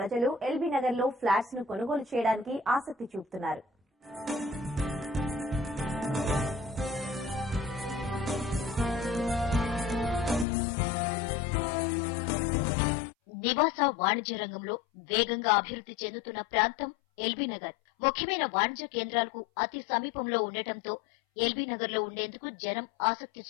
ఎల్బీ నగర్ లో ఫ్లాట్స్ ను కొనుగోలు చేయడానికి ఆసక్తి చూపుతున్నారు. నివాస వాణిజ్య రంగంలో వేగంగా అభివృద్ధి చెందుతున్న ప్రాంతం ఎల్బీ నగర్. ముఖ్యమైన వాణిజ్య కేంద్రాలకు అతి సమీపంలో ఉండటంతో ఎల్బీ నగర్ లో ఉండేందుకు జనం ఆసక్తి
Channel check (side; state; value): right; drops out; at 10.5 s